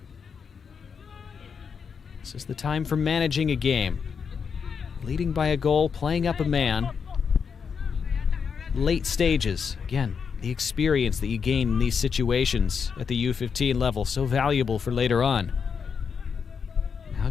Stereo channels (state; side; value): quieter; right; 6.3 dB